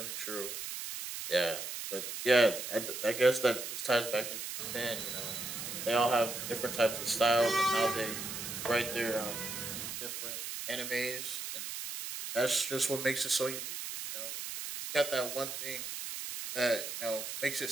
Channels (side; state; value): right; noise; hiss, 6 dB below the sound